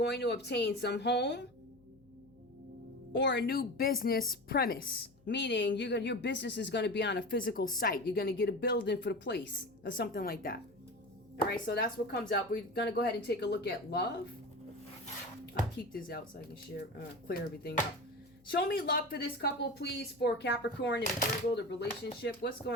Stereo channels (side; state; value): left; noise; hum, 30 dB below the sound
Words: to obtain some home or a new business premise. Meaning your business is going to be on a physical site. You're going to get a building for the place or something like that. All right, so that's what comes up. We're going to go ahead and take a look at love. I'll keep this out so I can clear everything up. Show me love for this couple, please, for Capricorn and Virgo, the relationship. What's